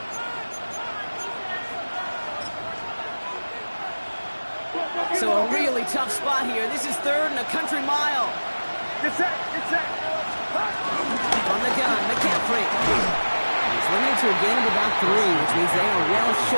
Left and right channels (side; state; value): both; inverted; correlation -1.00